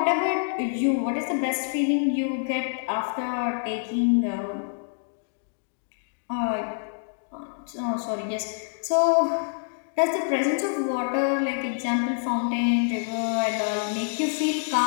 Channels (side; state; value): right; silent; digital silence